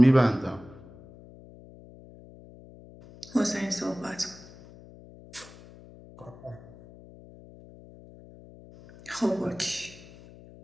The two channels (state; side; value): noise; left; hum, 20 dB below the sound